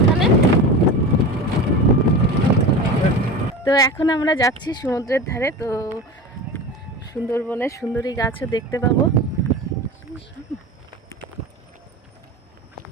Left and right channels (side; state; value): both; normal; correlation 0.30